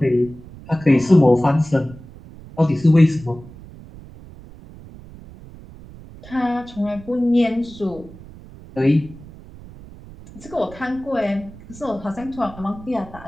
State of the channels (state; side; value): noise; right; rumble, 18 dB below the sound